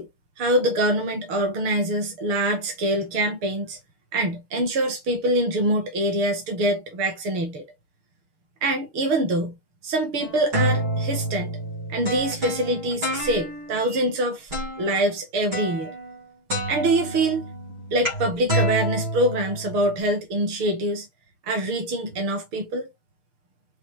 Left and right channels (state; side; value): late; left; 6.4 ms